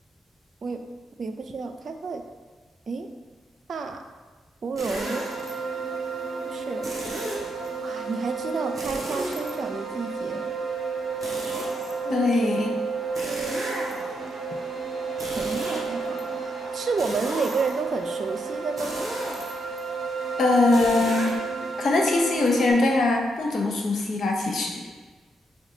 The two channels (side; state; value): both; normal; correlation 0.78